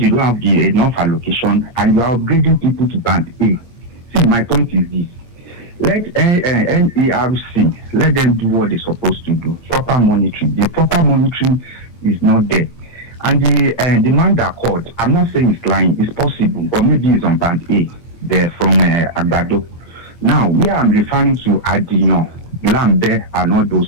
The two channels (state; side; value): late; right; 8.6 ms